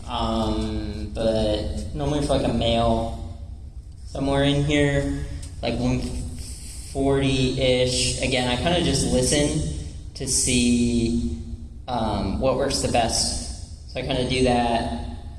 But normally for like a male, somewhere in here, like 140-ish. Again, I kind of just listen to see what works the best. So I kind of do that,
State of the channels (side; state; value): both; identical; correlation 1.00